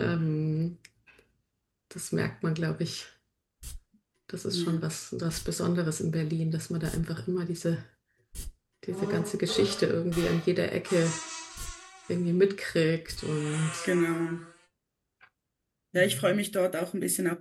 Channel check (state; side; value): identical; both; correlation 1.00